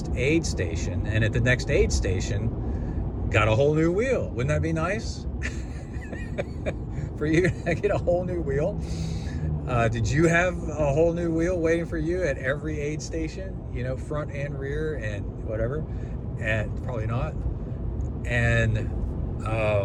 aid station. And at the next aid station, got a whole new wheel. Wouldn't that be nice? For you to get a whole new wheel? Did you have a whole new wheel waiting for you at every aid station? You know, front and rear and whatever? And probably not. And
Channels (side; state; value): both; identical; correlation 1.00